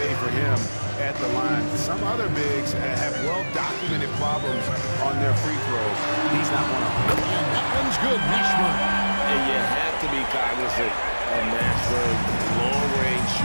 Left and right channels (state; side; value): inverted; both; correlation -1.00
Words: for him at the line. Some other bigs have well-documented problems on their free throws. He's not one of them. And that one's good, Mashburn. And you have to be cognizant of Mashburn's long-range